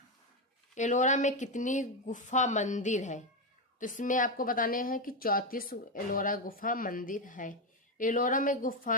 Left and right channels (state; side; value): normal; both; correlation 0.09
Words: एलोरा में कितनी गुफा मंदिर है? तो इसमें आपको बताने हैं कि 34 एलोरा गुफा मंदिर है। एलोरा में